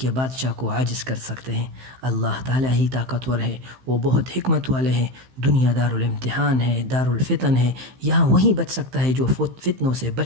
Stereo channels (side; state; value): left; late; 15 ms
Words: بادشاہ کو عاجز کر سکتے ہیں۔ اللہ تعالیٰ ہی طاقتور ہے، وہ بہت حکمت والے ہیں۔ دنیا دار الامتحان ہے، دار الفتن ہے۔ یہاں وہی بچ سکتا ہے جو فتنوں سے